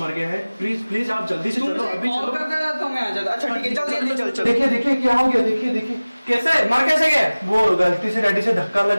गया है। प्लीज प्लीज आप जल्दी से चलो, अभी कॉल चलो। करता था तो मैं आ जाता। अच्छा ठीक है, जल्दी चल चल। देखिए देखिए क्या हो गया, देखिए देखिए कैसे मर कैसे गए? वो गलती से डैडी से धक्का लग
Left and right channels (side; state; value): both; inverted; correlation -0.99